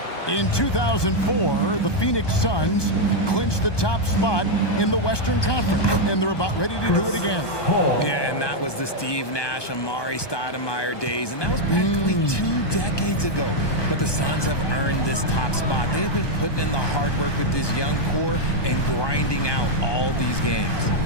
In 2004, the Phoenix Suns clinched the top spot in the Western Conference, and they're about ready to do it again. Yeah, and that was the Steve Nash, Amari Stoudemire days, and that was practically 2 decades ago. But the Suns have earned this top spot. They have been putting in the hard work with this young core and grinding out all these games.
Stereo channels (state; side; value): late; right; 1.2 ms